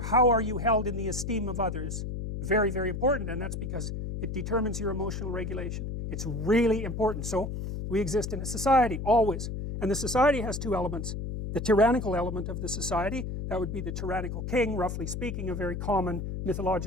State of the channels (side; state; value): left; noise; hum, 5 dB below the sound